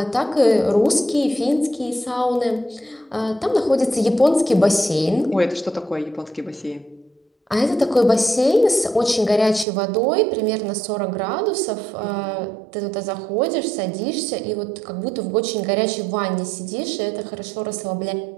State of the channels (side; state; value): left; drops out; at 9.7 s